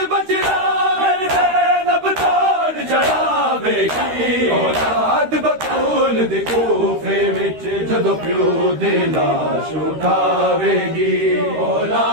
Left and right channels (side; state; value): left; late; 13 ms